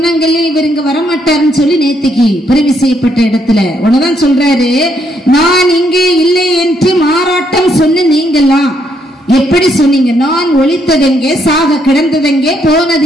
இவர் இங்க வரமாட்டாருன்னு சொல்லி நேத்திக்கு பிறவி செய்யப்பட்ட இடத்துல உடனேதான் சொல்றாரு, நான் இங்கே இல்லை என்று மாறாட்டம் சொன்ன நீங்கெல்லாம் எப்படி சொன்னீங்க? நான் ஒளித்ததெங்கே, சாக கிடந்ததெங்கே, போனது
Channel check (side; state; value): both; normal; correlation 0.73